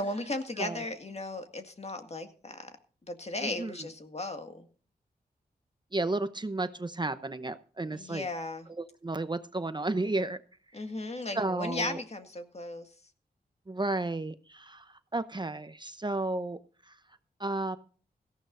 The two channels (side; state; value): both; normal; correlation 0.56